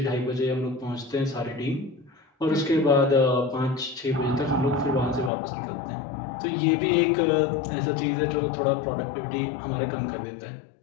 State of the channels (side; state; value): right; drops out; at 5.3 s